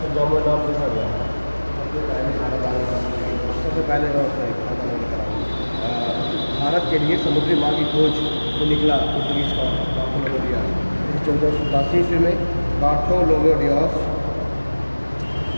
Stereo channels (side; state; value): both; inverted; correlation -1.00